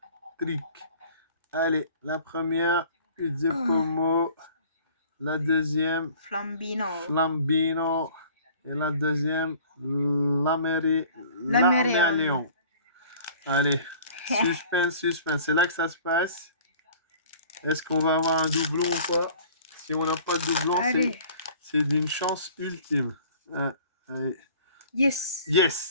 Trick. Allez, la première, Pomo. La deuxième, Flambino. Flambino. Et la deuxième, Lamérion. Allez, suspense. C'est là que ça se passe. Est-ce qu'on va avoir un doublon ou pas? Si on n'a pas de doublon, c'est d'une chance ultime. Allez.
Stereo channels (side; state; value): both; inverted; correlation -0.49